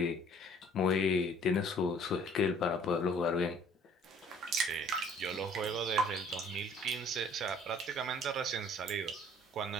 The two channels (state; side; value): normal; both; correlation 0.55